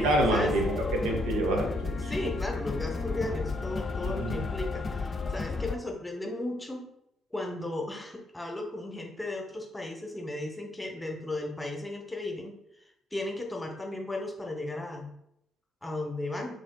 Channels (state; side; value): normal; both; correlation 0.73